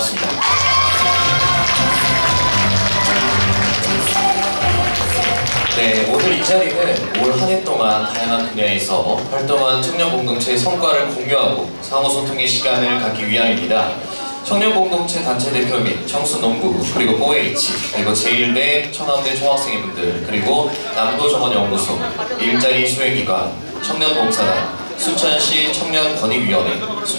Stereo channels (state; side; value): inverted; both; correlation -1.00